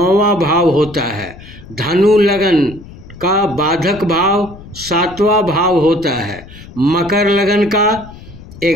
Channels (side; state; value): left; noise; rumble, 18 dB below the sound